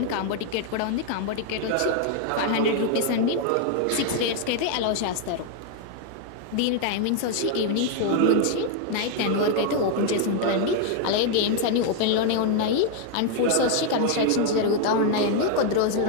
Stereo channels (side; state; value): both; different; correlation 0.00